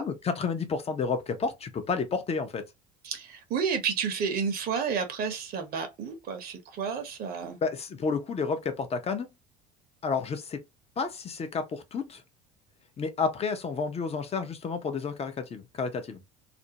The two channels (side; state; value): both; normal; correlation 0.24